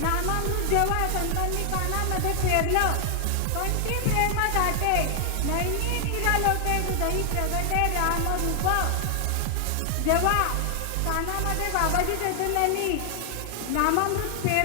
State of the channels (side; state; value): both; different; correlation 0.00